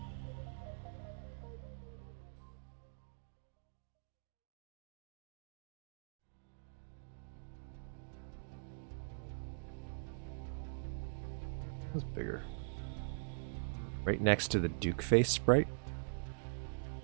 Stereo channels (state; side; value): silent; left; digital silence